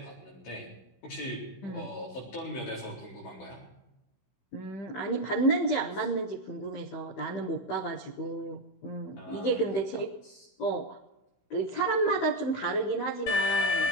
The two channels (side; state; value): right; late; 16 ms